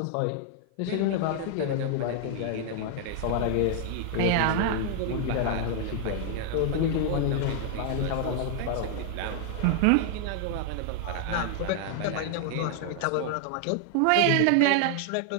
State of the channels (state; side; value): different; both; correlation 0.00